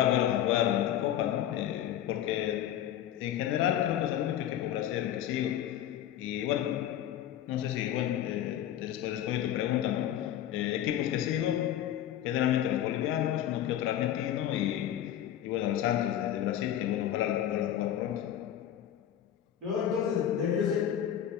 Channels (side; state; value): right; quieter; 11.2 dB